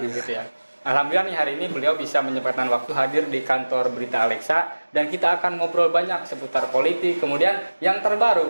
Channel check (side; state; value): both; inverted; correlation -1.00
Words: gitu ya. Alhamdulillah nih hari ini beliau bisa menyempatkan waktu hadir di kantor Berita Alexa dan kita akan ngobrol banyak seputar politik. Kemudian yang terbaru,